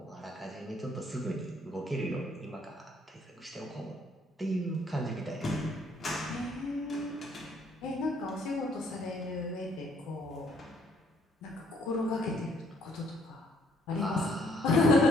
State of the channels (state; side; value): normal; both; correlation 0.66